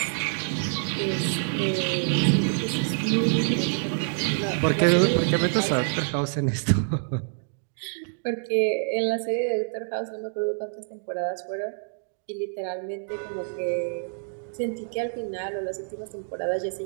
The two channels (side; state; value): left; silent; digital silence